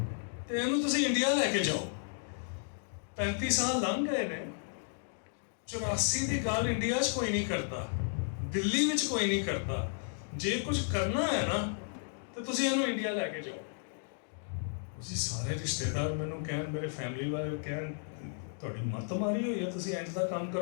ਤੇ ਇਹਨੂੰ ਤੁਸੀਂ ਇੰਡੀਆ ਲੈ ਕੇ ਜਾਓ। 35 ਸਾਲ ਲੰਘ ਗਏ ਨੇ, 84 ਦੀ ਗੱਲ ਇੰਡੀਆ 'ਚ ਕੋਈ ਨਹੀਂ ਕਰਦਾ, ਦਿੱਲੀ ਵਿੱਚ ਕੋਈ ਨਹੀਂ ਕਰਦਾ। ਜੇ ਕੁਝ ਕਰਨਾ ਹੈ ਨਾ ਤੇ ਤੁਸੀਂ ਇਹਨੂੰ ਇੰਡੀਆ ਲੈ ਕੇ ਜਾਓ। ਤੁਸੀਂ ਸਾਰੇ ਰਿਸ਼ਤੇਦਾਰ ਮੈਨੂੰ ਕਹਿਣ, ਮੇਰੇ ਫੈਮਿਲੀ ਵਾਲੇ ਕਹਿਣ, ਤੁਹਾਡੀ ਮੱਤ ਮਾਰੀ ਹੋਈ ਹੈ, ਤੁਸੀਂ ਇੰਝ ਦਾ ਕੰਮ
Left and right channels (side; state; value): right; silent; digital silence